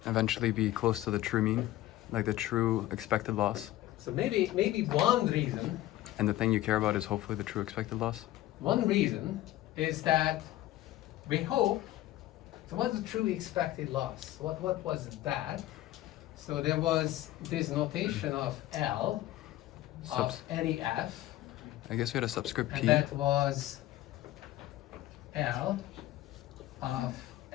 eventually be close to the true mean, like the true expected loss. So maybe one reason And the thing you care about is hopefully the true expected loss. One reason is that we hope, so what's the true expected loss? What was that? So there was this notation of L of Subs- any F, I guess we had a subscript and P. that was L of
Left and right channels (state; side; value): quieter; right; 15.2 dB